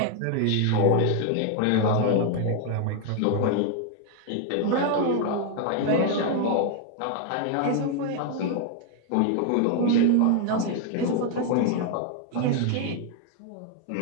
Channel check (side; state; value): both; different; correlation 0.00